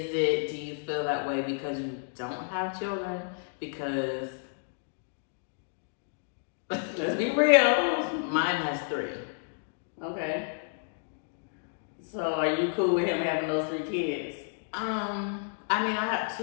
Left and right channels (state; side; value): silent; right; digital silence